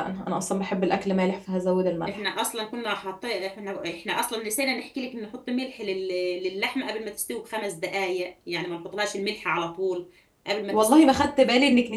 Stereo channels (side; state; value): both; identical; correlation 1.00